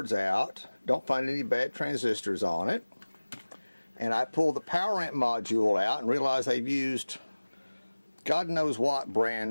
out, don't find any bad transistors on it, and I pull the power amp module out and realize they've used God knows what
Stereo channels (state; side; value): inverted; both; correlation -1.00